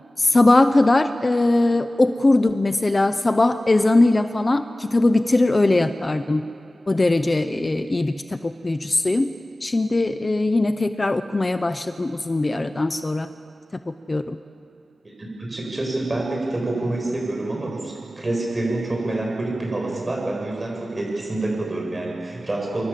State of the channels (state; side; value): normal; both; correlation 0.97